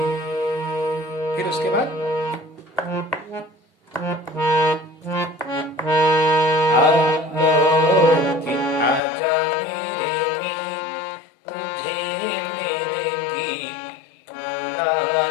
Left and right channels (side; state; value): right; drops out; at 9.0 s